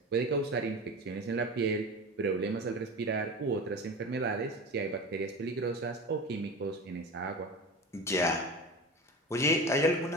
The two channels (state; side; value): normal; both; correlation 0.30